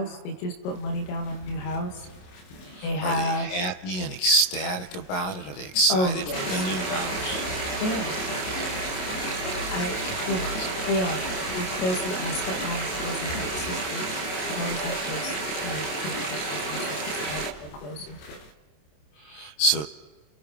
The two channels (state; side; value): late; right; 27 ms